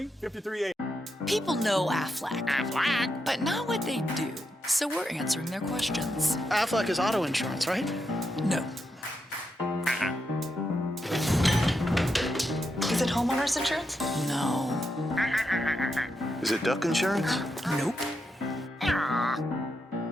People know Aflac, but not what they do. So we're answering their questions. Aflac is auto insurance, right? No. Is it homeowner's insurance? No. Is it duck insurance? Nope.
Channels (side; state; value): both; normal; correlation 0.84